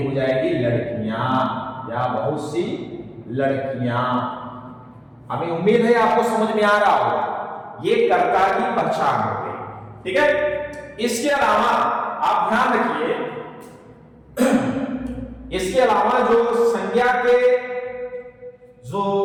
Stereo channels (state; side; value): identical; both; correlation 1.00